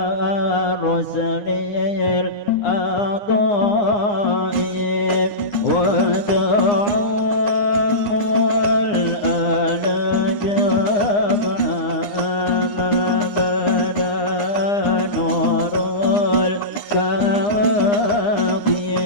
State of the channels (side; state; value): right; late; 9.8 ms